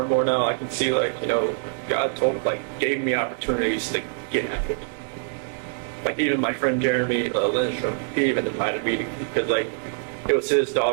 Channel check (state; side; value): silent; left; digital silence